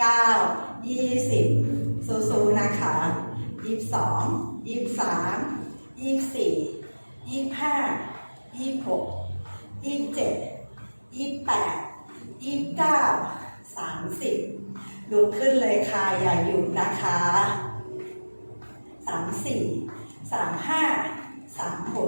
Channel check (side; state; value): both; inverted; correlation -1.00